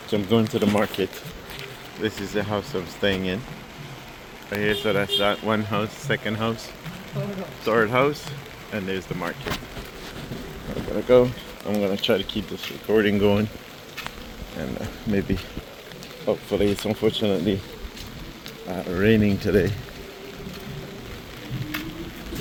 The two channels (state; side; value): identical; both; correlation 1.00